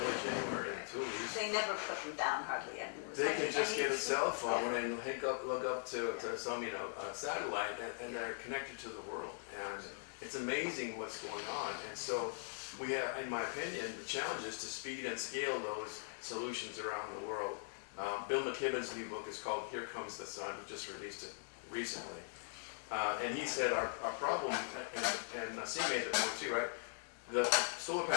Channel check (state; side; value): silent; right; digital silence